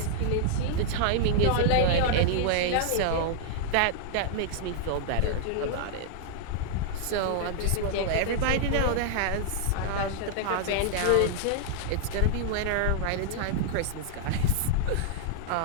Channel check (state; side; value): different; both; correlation -0.01